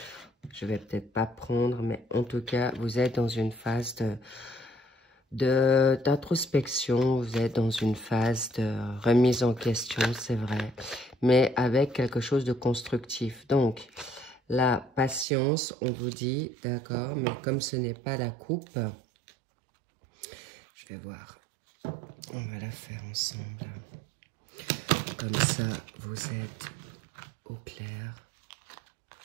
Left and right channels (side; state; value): left; drops out; at 15.2 s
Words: je vais peut-être pas prendre, mais en tout cas, vous êtes dans une phase d'introspection, vous êtes dans une phase de remise en question, c'est vrai, mais avec quelque chose de constructif. Donc, la patience, on vous dit, d'accord, mais comme ce n'est pas la coupe, je vais voir, on va la faire ensemble. Comme ça, vous êtes au clair